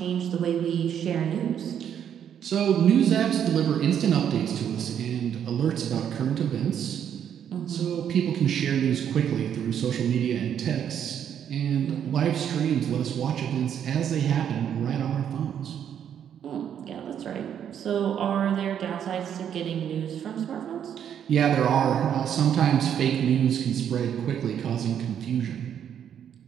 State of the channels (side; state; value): left; quieter; 9.0 dB